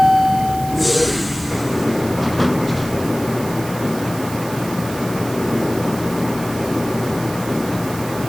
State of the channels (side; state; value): right; noise; hiss, 14 dB below the sound